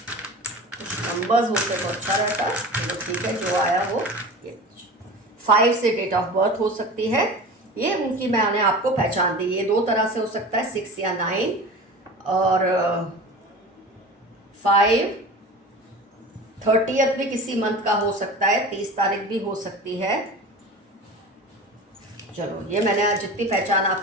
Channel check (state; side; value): normal; both; correlation 0.35